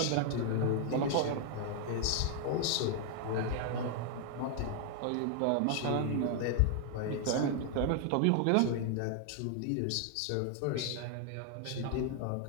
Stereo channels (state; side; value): different; both; correlation 0.00